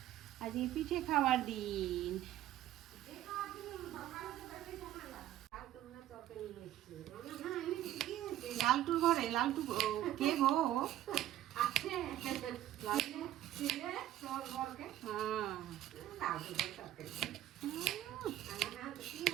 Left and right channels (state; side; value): quieter; left; 13.3 dB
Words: আজ পিঠে খাওয়ার দিন। লালটুর ঘরে, লালটু কে গো?